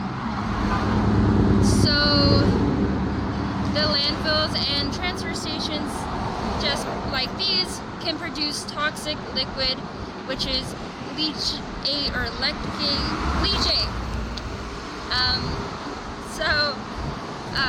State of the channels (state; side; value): identical; both; correlation 1.00